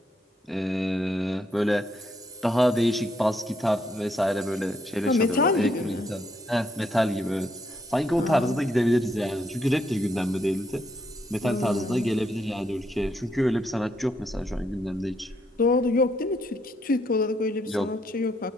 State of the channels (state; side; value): normal; both; correlation 0.75